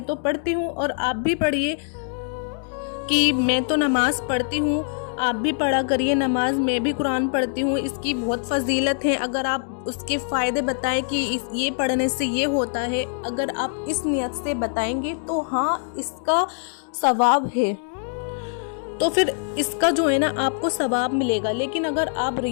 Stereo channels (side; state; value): right; silent; 63 dB below the other